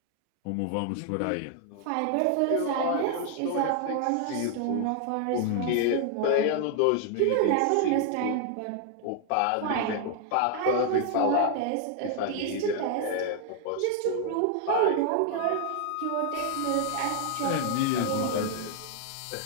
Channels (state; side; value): different; both; correlation 0.00